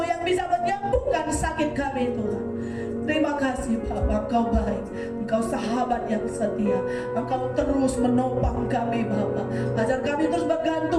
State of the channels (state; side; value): identical; both; correlation 1.00